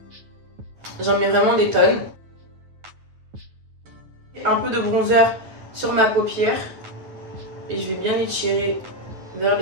J'en mets vraiment des tonnes. Un peu de bronzer sur ma paupière. Et je vais bien étirer vers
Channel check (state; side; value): late; left; 9.5 ms